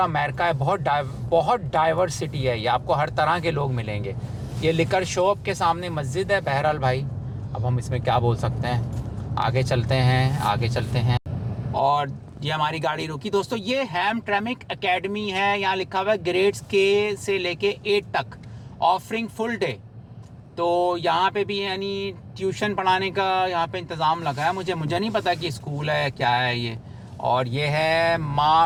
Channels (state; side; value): identical; both; correlation 1.00